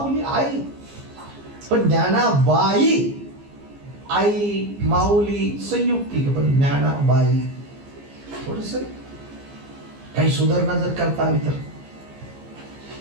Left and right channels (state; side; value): late; left; 15 ms